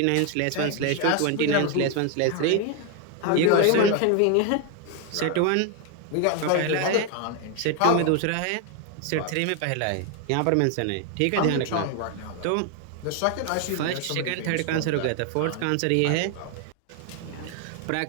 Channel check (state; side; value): different; both; correlation 0.01